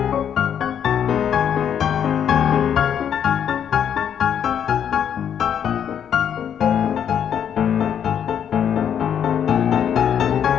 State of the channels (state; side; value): quieter; right; 8.7 dB